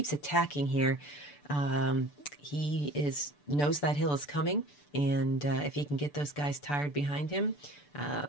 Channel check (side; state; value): right; late; 6.9 ms